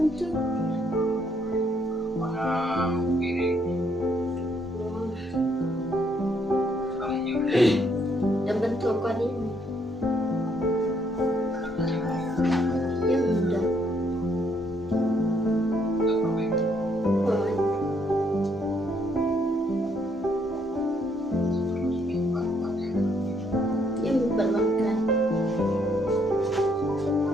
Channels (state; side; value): normal; both; correlation 0.71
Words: ito. mga piring kali yun. Dan bentuk kau ni. Yang mudah. Oh, yang bermakan.